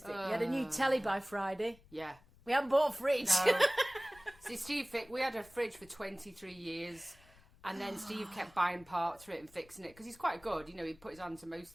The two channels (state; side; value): noise; left; rumble, 26 dB below the sound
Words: We had a new telly by Friday. Yeah. We haven't bought a fridge. No. See, Steve, we had a fridge for 23 years, and then Steve kept buying parts for it and fixing it, because he's quite good, you know, he put his hand to most